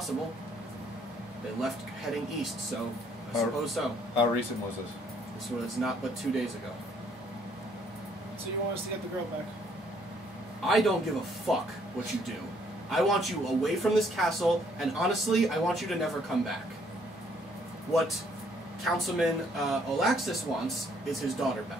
They left heading east, so I How- suppose so. How recent was this? This was not but 2 days ago. So you want us to get the girl back? I don't give a fuck what you do. I want you away from this castle, and honestly, I want you to never come back. What Councilman Olaxis wants is his daughter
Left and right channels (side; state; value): both; normal; correlation 0.66